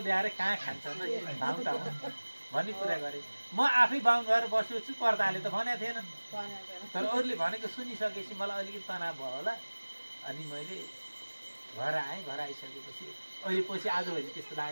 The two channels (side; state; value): both; inverted; correlation -1.00